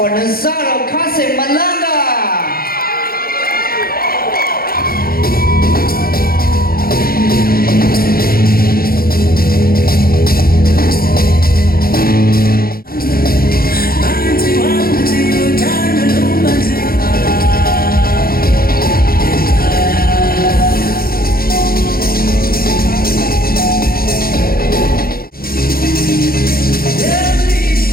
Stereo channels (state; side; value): late; right; 0.43 ms